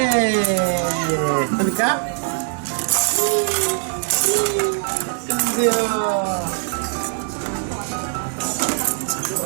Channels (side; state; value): left; silent; 57 dB below the other